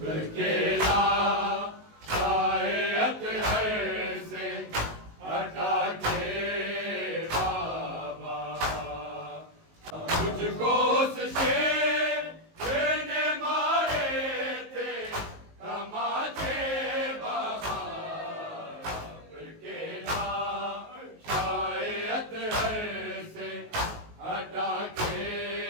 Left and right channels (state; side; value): late; left; 19 ms